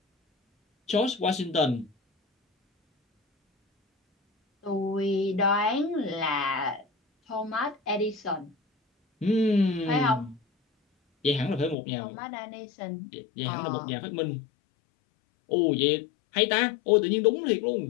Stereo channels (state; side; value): drops out; right; at 11.8 s